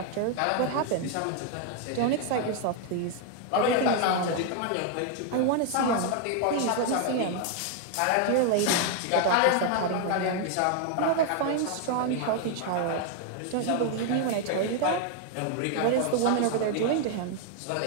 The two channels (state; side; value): different; both; correlation 0.00